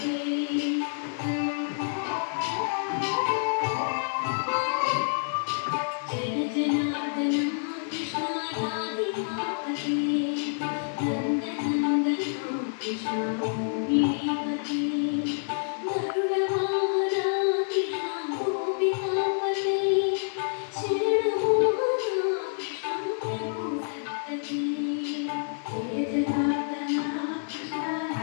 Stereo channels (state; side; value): silent; right; digital silence